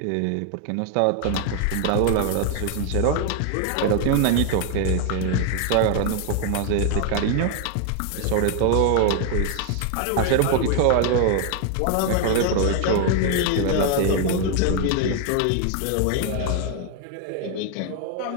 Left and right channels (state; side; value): different; both; correlation 0.00